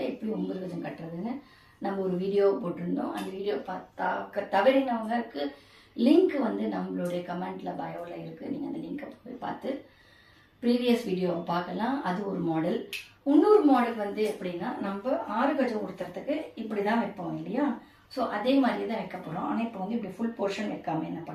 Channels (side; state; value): both; identical; correlation 1.00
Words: எப்படி 9 கஜம் கட்டுறதுன்னு நம்ம ஒரு வீடியோ போட்டிருந்தோம். அந்த வீடியோ தவறினவங்களுக்கு லிங்க் வந்து நம்மளுடைய கமெண்ட்டில் பயோவில் இருக்குது. நீங்கள் அந்த லிங்கை போய் பார்த்து ப்ரீவியஸ் வீடியோவை பார்க்கலாம். அது ஒரு மாடல். இன்னொரு மாடல் வந்து எப்படின்னா, நம்ம 6 கஜம் உடுத்துறதுக்கு இப்படி தான் வைப்போம் இல்லையா? ஸோ அதே மாதிரி தான் வைக்க போகிறோம். ஆனால் இப்போ வந்து இப்படி ஃபுல் போர்ஷன் வைக்காமல் என்ன